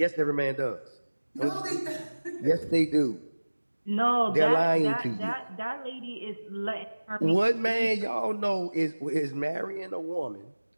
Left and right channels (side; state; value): both; inverted; correlation -1.00